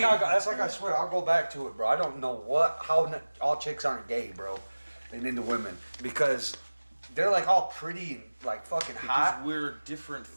like I swear I'll go back to it, bro. I don't know how all chicks aren't gay, bro. They into women because they're like all pretty and like fucking because hot. we're a different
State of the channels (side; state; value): both; inverted; correlation -1.00